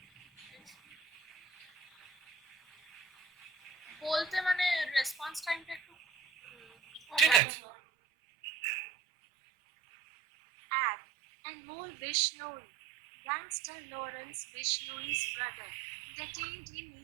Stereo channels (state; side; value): drops out; left; at 7.4 s